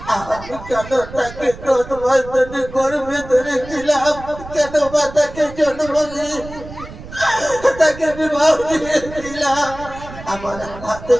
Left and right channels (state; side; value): noise; right; rumble, 14 dB below the sound